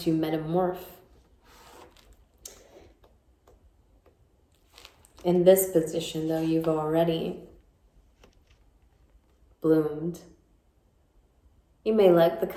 metamorph. In this position, though, you've already bloomed. You may like the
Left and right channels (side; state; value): both; identical; correlation 1.00